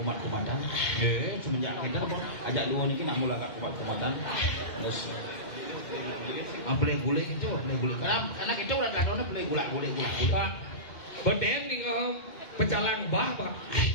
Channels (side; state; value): right; late; 2.1 ms